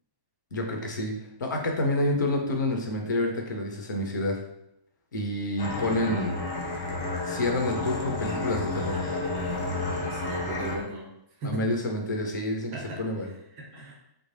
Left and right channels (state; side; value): late; left; 1.1 ms